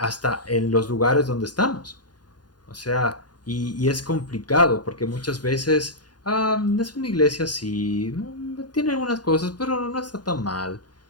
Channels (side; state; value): right; late; 0.70 ms